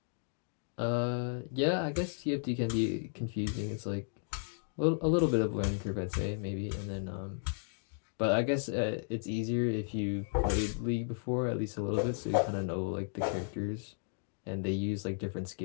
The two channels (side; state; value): right; silent; digital silence